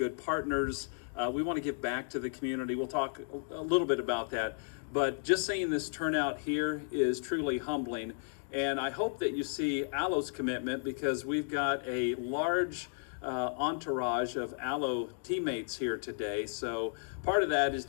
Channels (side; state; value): right; silent; digital silence